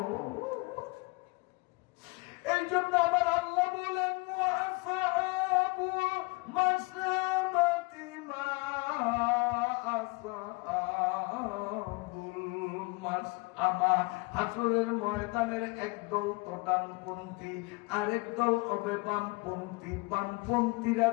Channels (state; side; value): quieter; right; 26.7 dB